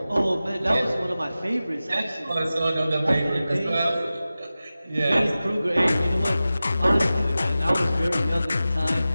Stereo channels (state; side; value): inverted; both; correlation -0.95